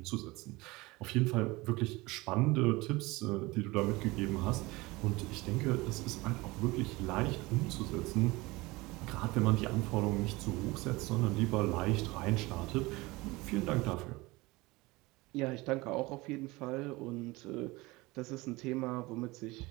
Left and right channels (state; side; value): quieter; left; 22.0 dB